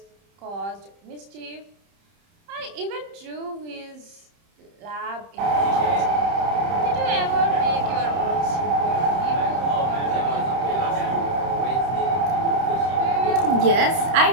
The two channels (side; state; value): left; late; 30 ms